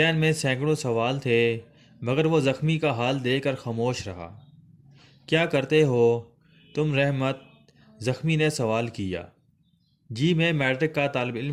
میں سینکڑوں سوال تھے، مگر وہ زخمی کا حال دیکھ کر خاموش رہا۔ کیا کرتے ہو تم رحمت؟ زخمی نے سوال کیا۔ جی، میں میٹرک کا طالب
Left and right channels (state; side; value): identical; both; correlation 1.00